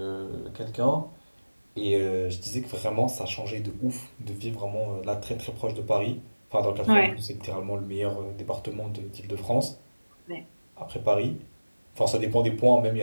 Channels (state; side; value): inverted; both; correlation -1.00